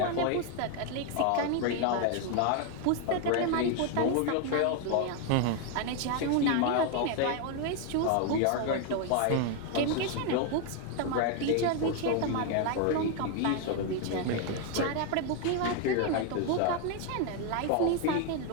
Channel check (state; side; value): different; both; correlation 0.01